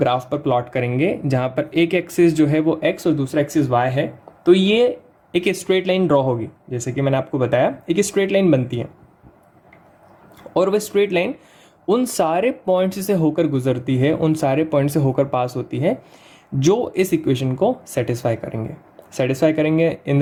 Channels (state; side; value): identical; both; correlation 1.00